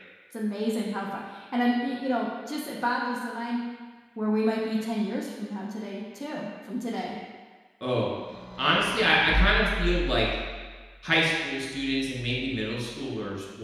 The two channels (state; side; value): identical; both; correlation 1.00